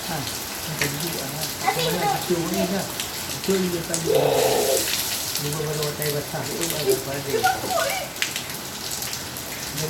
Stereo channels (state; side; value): identical; both; correlation 1.00